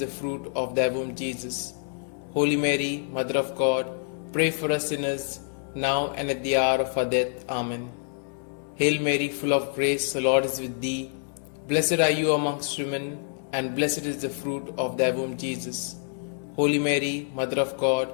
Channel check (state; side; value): silent; right; 58 dB below the other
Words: fruit of thy womb, Jesus. Holy Mary, Mother of God, pray for us sinners, now and at the hour of our death. Amen. Hail Mary, full of grace, the Lord is with thee. Blessed are you amongst women, and blessed is the fruit of thy womb, Jesus. Holy Mary, Mother of God,